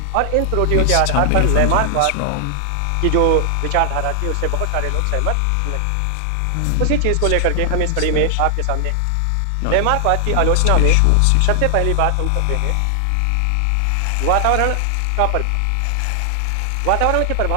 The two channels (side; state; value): both; different; correlation 0.00